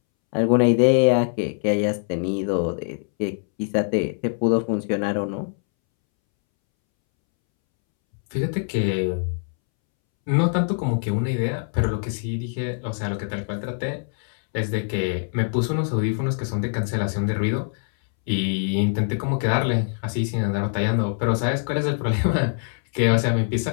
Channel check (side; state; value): right; silent; 63 dB below the other